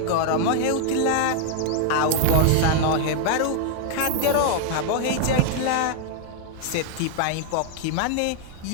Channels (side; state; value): both; different; correlation 0.00